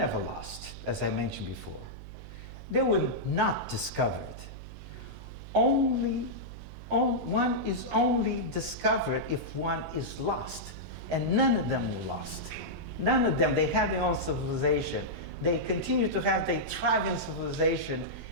lost, as I mentioned before. They were not discovered. One is only discovered if one is lost, and none of them were lost. None of them. They had their own civilization. They continue to have their thriving civilization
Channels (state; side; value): noise; right; hum, 13 dB below the sound